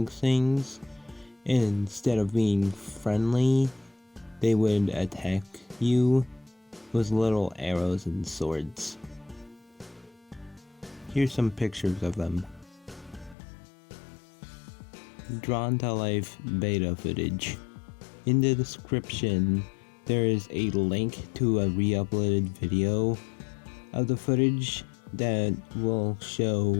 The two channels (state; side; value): drops out; right; at 13.4 s